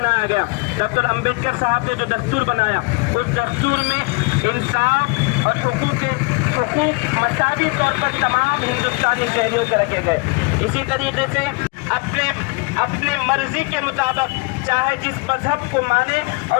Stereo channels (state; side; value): quieter; right; 29.3 dB